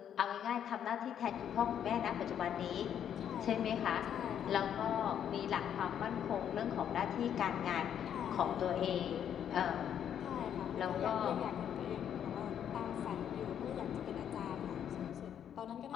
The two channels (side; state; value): right; quieter; 9.3 dB